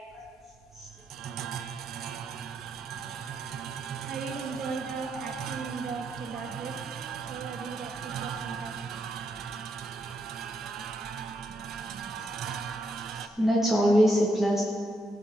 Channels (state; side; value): normal; both; correlation 0.78